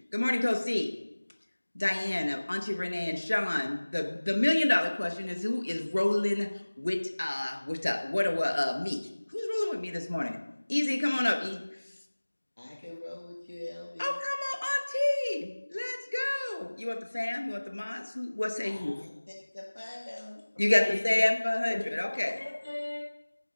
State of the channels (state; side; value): inverted; both; correlation -1.00